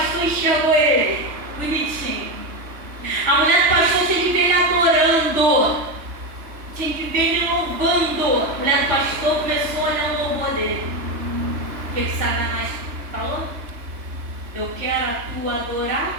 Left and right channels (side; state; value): left; late; 3.2 ms